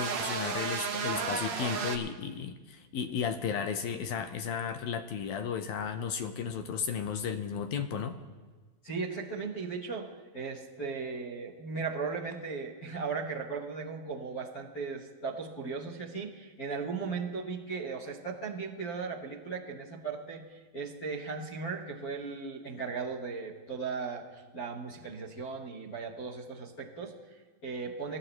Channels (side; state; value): right; late; 12 ms